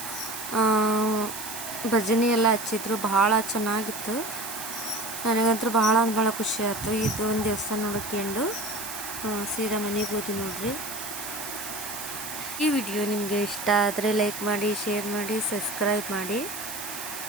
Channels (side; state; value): right; noise; hiss, 8 dB below the sound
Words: ಭಜನೆ ಎಲ್ಲ ಹಚ್ಚಿದ್ರು, ಭಾಳ ಚೆನ್ನಾಗಿತ್ತು. ನನಗಂತೂ ಭಾಳ ಖುಷಿ ಆಯಿತು. ಇದು ಒಂದು ದೇವಸ್ಥಾನ ನೋಡ್ಕೊಂಡು ಸೀದಾ ಮನೆಗೆ ಹೋದ್ವಿ ನೋಡ್ರಿ. ಈ ವಿಡಿಯೋ ನಿಮಗೆ ಇಷ್ಟ ಆದರೆ ಲೈಕ್ ಮಾಡಿ, ಶೇರ್ ಮಾಡಿ, ಸಬ್ಸ್ಕ್ರೈಬ್ ಮಾಡಿ.